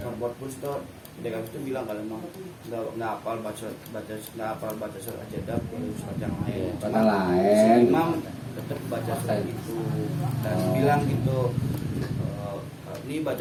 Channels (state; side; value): identical; both; correlation 1.00